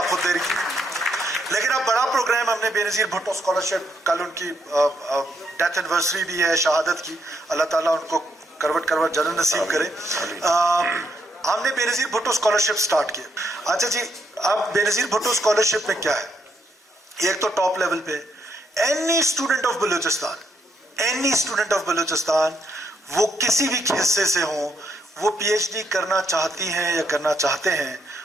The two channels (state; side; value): normal; both; correlation 0.76